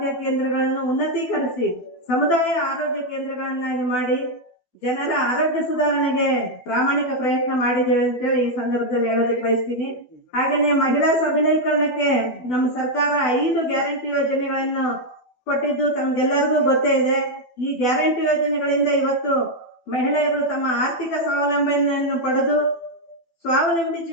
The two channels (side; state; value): right; late; 12 ms